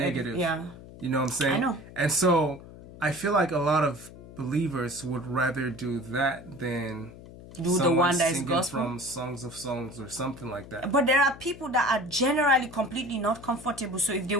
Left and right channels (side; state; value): left; noise; hum, 17 dB below the sound